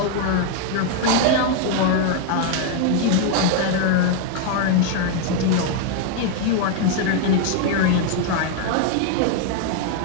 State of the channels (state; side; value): different; both; correlation 0.01